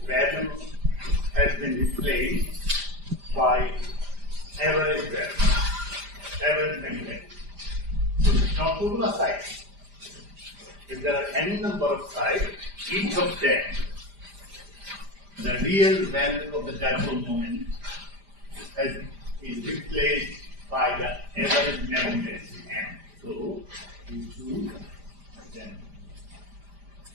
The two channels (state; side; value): late; left; 5.0 ms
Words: value has been replaced by average value, average value. So it's not regular cycle. If there are any number of sides, each of them, the real value of the dipole moment is replaced by the average magnetic M. So we choose them.